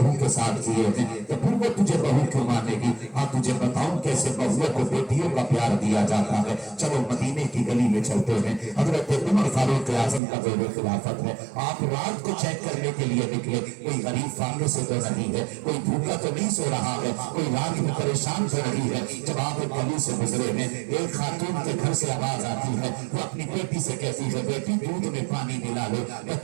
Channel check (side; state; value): left; drops out; at 10.2 s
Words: کے ساتھ کیے ہیں تو پھر وہ تجھے بہو کیوں مانے گی؟ ہاں تجھے بتاؤں کیسے بہوؤں کو بیٹیوں کا پیار دیا جاتا ہے. چلو مدینے کی گلی میں چلتے ہیں. حضرت عمر فاروق اعظم کا دور خلافت ہے. آپ رات کو چیک کرنے کے لیے نکلے. کوئی غریب فاقے سے تو نہیں ہے، کوئی بھوکا تو نہیں سو رہا ہے، کوئی رات میں پریشان کر رہی ہے. جب آپ ایک گلی سے گزرے ہیں, ایک خاتون کے گھر سے آواز آتی ہے, وہ اپنی بیٹی سے کہتی ہے بیٹی دودھ میں پانی ملا لو.